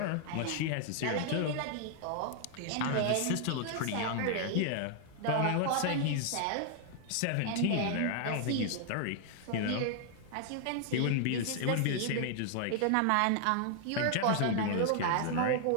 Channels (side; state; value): both; different; correlation 0.00